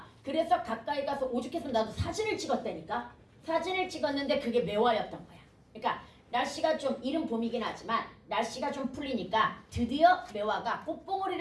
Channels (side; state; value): both; identical; correlation 1.00